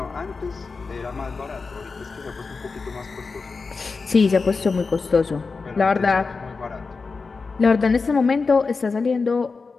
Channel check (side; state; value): right; quieter; 4.5 dB